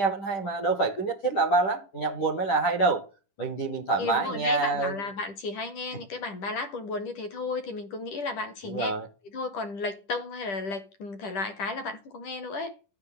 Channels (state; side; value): late; right; 10 ms